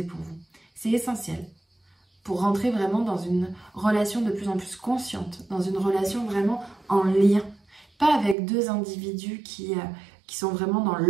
pour vous. C'est essentiel pour rentrer vraiment dans une relation de plus en plus consciente, dans une relation vraiment en lien. Pas avec deux individus qui sont vraiment dans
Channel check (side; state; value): left; drops out; at 8.3 s